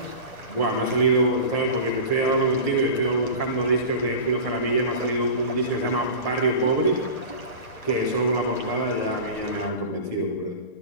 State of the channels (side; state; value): right; late; 1.9 ms